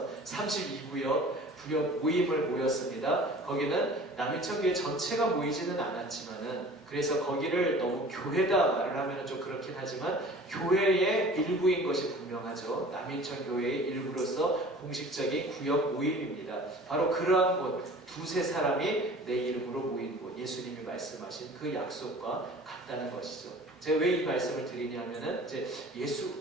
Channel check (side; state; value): both; normal; correlation 0.45